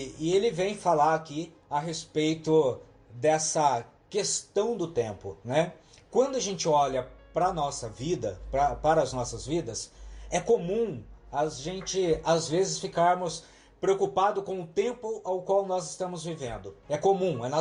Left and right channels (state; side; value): identical; both; correlation 1.00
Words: ele vem falar aqui a respeito dessa questão do tempo, né? Quando a gente olha para a nossa vida, para as nossas vidas, é comum a gente, às vezes, ficarmos preocupados com o tempo ao qual nós estamos vivendo. É comum, é